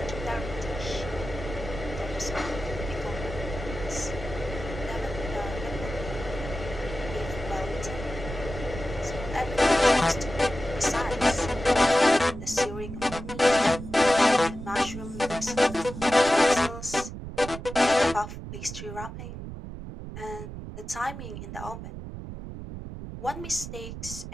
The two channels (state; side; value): noise; right; rumble, 9 dB below the sound